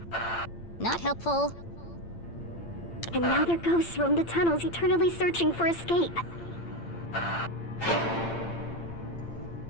Not helpful. And now their ghosts roam the tunnels, eternally searching for escape.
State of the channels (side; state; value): right; late; 8.8 ms